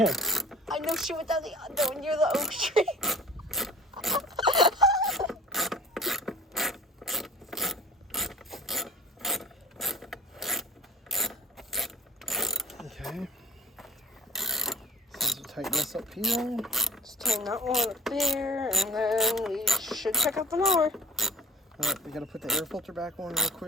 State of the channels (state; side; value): normal; both; correlation 0.43